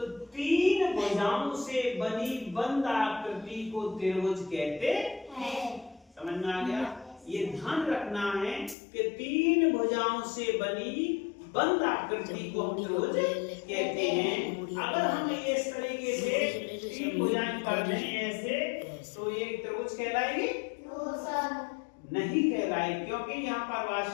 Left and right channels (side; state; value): right; drops out; at 8.8 s